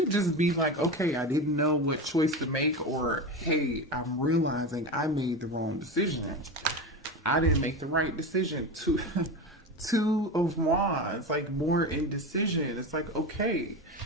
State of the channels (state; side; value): normal; both; correlation 0.23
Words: just be like, okay, I didn't know what choice to make, or hey, I'm realizing I made the wrong decision. I didn't make the right decision. Two of Wands, like more indecision. It's like, okay,